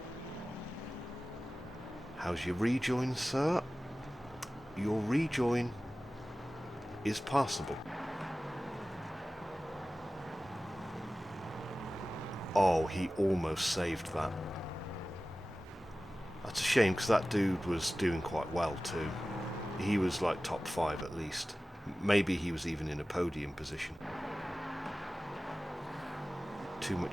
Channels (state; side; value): normal; both; correlation 0.96